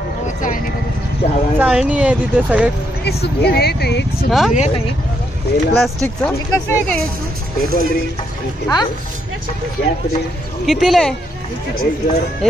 चाळणी आहे तिथे सगळे. प्लास्टिकचं कसं आहे काय? कितीला आहे?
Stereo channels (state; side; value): normal; both; correlation 0.76